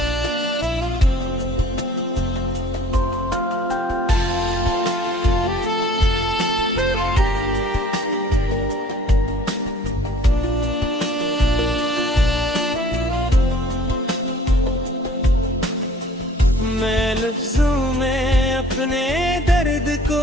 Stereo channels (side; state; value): both; normal; correlation 0.52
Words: मैं लफ्जों में अपने दर्द को